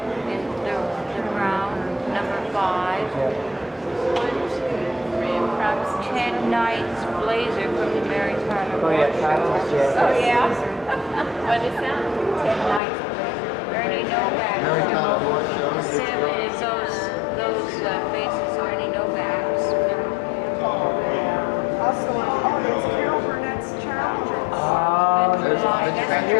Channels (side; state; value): right; drops out; at 12.8 s